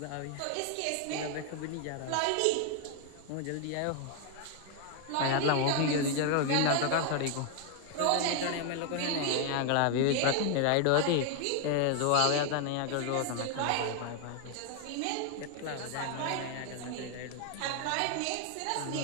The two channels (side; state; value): both; different; correlation 0.00